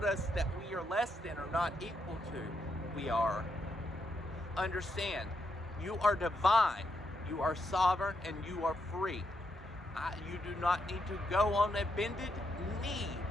us that we are less than or not equal to. We are. Understand, you are divine, you are sovereign, and you are free. You do not need to go on a bended knee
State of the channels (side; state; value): both; normal; correlation 0.80